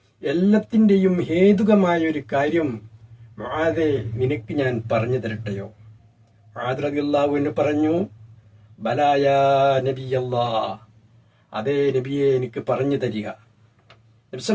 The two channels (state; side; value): identical; both; correlation 1.00